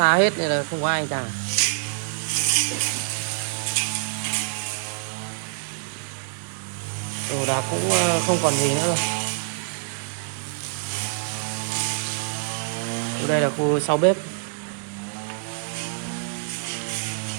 hết nên là không có ai cả. Đồ đạc cũng không còn gì nữa rồi. Đây là khu sau bếp.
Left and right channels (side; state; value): left; silent; digital silence